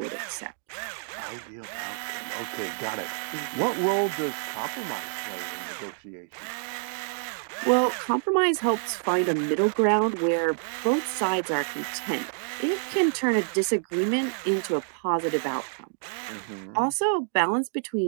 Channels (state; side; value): silent; left; digital silence